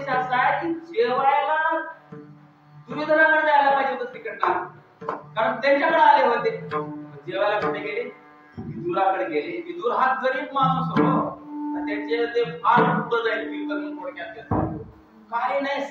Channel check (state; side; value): identical; both; correlation 1.00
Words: असा आहे की जेवायला दुर्योधनाकडे जायला पाहिजे होतं श्रीकृष्णाला, कारण त्यांच्याकडे आले होते. जेवायला कुठे गेले? विदुराकडे गेले. विदुर हा गरीब माणूस हो, त्याचे ते फार पुढे जाईल विकून थोडक्यात. काही नाही,